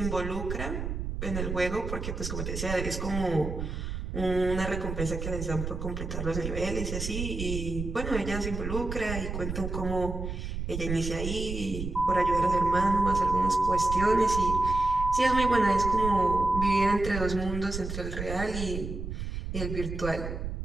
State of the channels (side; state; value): right; noise; rumble, 5 dB below the sound